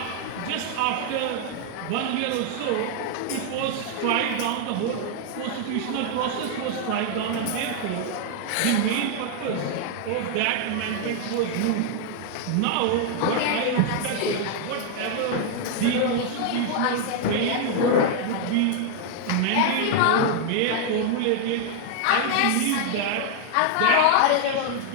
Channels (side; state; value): both; different; correlation 0.00